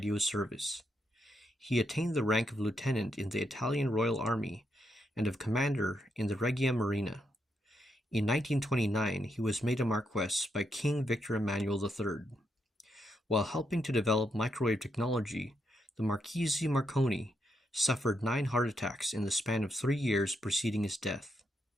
service. He attained the rank of lieutenant in the Italian Royal Army and of commander in the Regia Marina. In 1929, he was made a Marquess by King Victor Emmanuel III. While helping to develop microwave technology, the Marchese Marconi suffered 9 heart attacks in the span of 3 years preceding his death.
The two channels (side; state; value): both; normal; correlation 0.81